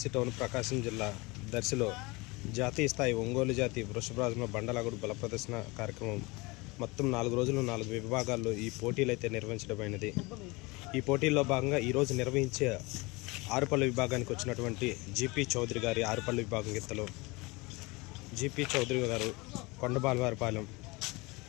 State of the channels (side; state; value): right; quieter; 24.7 dB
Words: టౌన్ ప్రకాశం జిల్లా దర్శిలో జాతీయ స్థాయి ఒంగోలు జాతి వృషభరాజుల బండలాగుడు బల ప్రదర్శన కార్యక్రమం మొత్తం 4 రోజులు 4 విభాగాల్లో ఈ పోటీలు అయితే నిర్వహించడమైనది. ఈ పోటీల్లో భాగంగా ఈరోజు నిర్వహించే ఆరుపల్లి విభాగానికి వచ్చినటువంటి జీపీ చౌదరి గారి ఆరుపల్లి విభాగం గిత్తలు జీపీ చౌదరి గారు కొండబాలవారిపాలెం